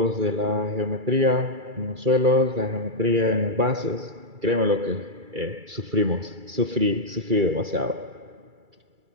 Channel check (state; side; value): late; left; 2.3 ms